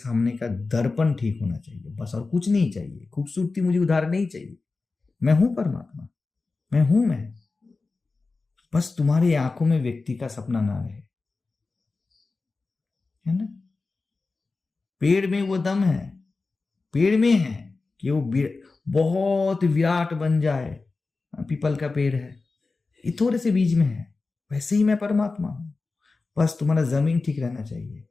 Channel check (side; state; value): right; quieter; 3.9 dB